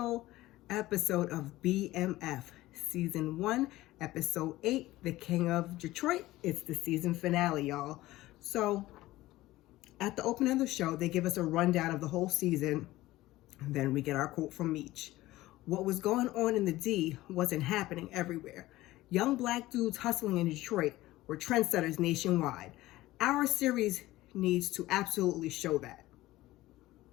episode of BMF, Season 1, Episode 8, The King of Detroit. It's the season finale, y'all. So, at the opening of the show, they give us a rundown of the whole season. Then we get our quote from Meech. What was going on in the D wasn't happening everywhere. Young black dudes hustling in Detroit were trendsetters nationwide. Our series needs to absolutely show that.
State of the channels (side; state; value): right; quieter; 17.2 dB